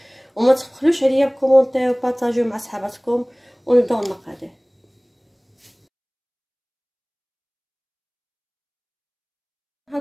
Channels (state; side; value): identical; both; correlation 1.00